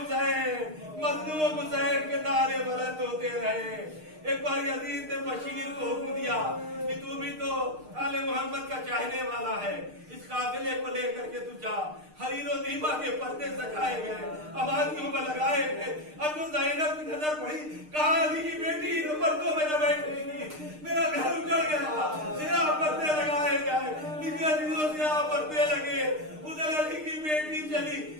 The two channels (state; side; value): late; left; 6.5 ms